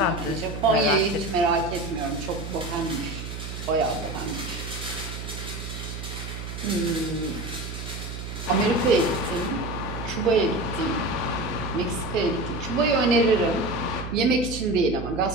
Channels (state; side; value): noise; right; hum, 8 dB below the sound